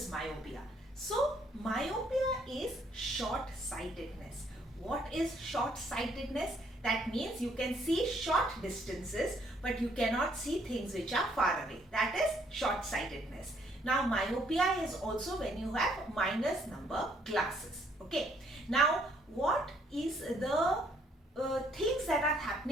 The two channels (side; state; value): both; normal; correlation 0.67